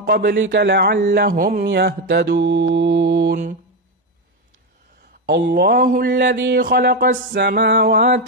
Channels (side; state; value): both; normal; correlation 0.10